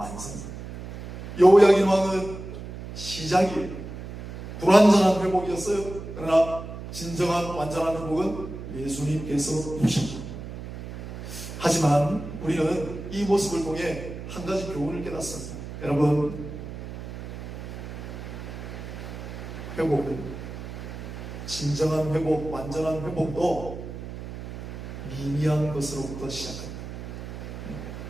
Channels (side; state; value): right; noise; hum, 10 dB below the sound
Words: 여호야긴 왕은 시작이에요. 불완전한 회복이었어요. 그러나 진정한 완전한 회복은 예수님께서 주십니다. 하지만 우리는 이 모습을 통해 한 가지 교훈을 깨닫습니다. 여러분, 회복은, 진정한 회복, 완전한 회복도 미미한 것으로부터 시작합니다.